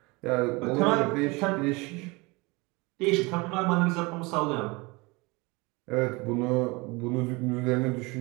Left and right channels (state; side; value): quieter; left; 25.5 dB